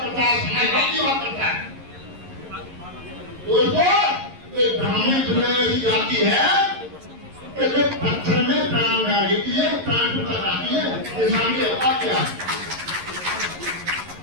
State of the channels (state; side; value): late; left; 11 ms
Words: करता है समाजवाद की बात करता है दोस्तों ये ब्राह्मण दुनिया की जाति है कि जो पत्थर में प्राण डाल देती है प्राण टूटा जाती है इंसान की औकात क्या